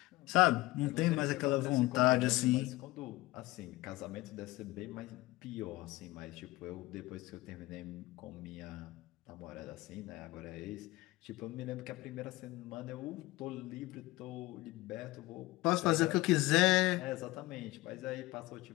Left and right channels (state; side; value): quieter; right; 19.6 dB